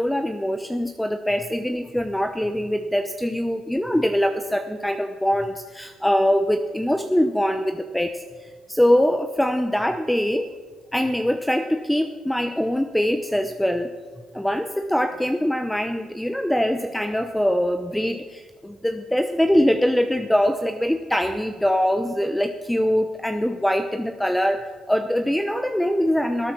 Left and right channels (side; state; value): both; normal; correlation 0.97